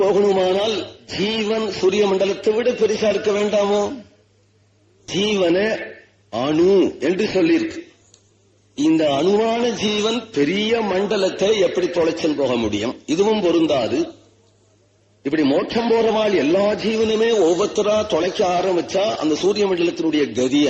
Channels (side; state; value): both; identical; correlation 1.00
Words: ஜீவன் சூரிய மண்டலத்தை விட பெருசா இருக்க வேண்டாமோ? ஜீவன அணு என்று சொல்லியிருக்கு. இந்த அணுவான ஜீவன் பெரிய மண்டலத்தை எப்படி தொலைச்சல் போக முடியும்? இதுவும் பொருந்தாது. இப்படி மோட்சம் போறவாள் எல்லா ஜீவனுமே ஒவ்வொருத்தரா தொலைக்க ஆரம்பிச்சா அந்த சூரிய மண்டலத்தினுடைய கதி